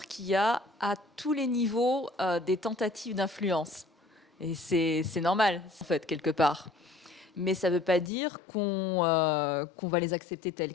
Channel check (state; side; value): drops out; right; at 8.1 s